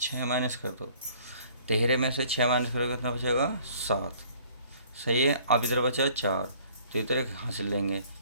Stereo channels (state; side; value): inverted; both; correlation -0.55